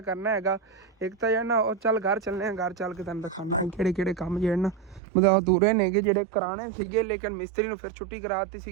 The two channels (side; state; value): left; drops out; at 5.0 s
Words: ਕਰਨਾ ਹੈਗਾ। ਇੱਕ ਤਾਂ ਜਿਹੜਾ ਨਾ ਉਹ ਚੱਲ ਘਰ ਚੱਲਣੇ ਆ, ਘਰ ਚੱਲ ਕੇ ਤੁਹਾਨੂੰ ਦਿਖਾਉਣਾ ਕਿਹੜੇ ਕੰਮ ਜਿਹੜੇ ਨਾ ਮਤਲਬ ਅਧੂਰੇ ਨੇਗੇ, ਜਿਹੜੇ ਕਰਾਣੇ ਸੀਗੇ ਲੇਕਿਨ ਮਿਸਤਰੀ ਨੂੰ ਫਿਰ ਛੁੱਟੀ ਕਰਾ ਦਿੱਤੀ